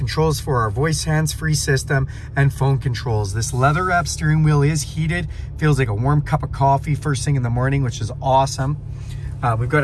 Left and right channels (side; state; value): both; identical; correlation 1.00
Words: for our voice hands-free system, and phone controls. This leather wrap steering wheel is heated. Feels like a warm cup of coffee first thing in the morning, which is awesome. We've got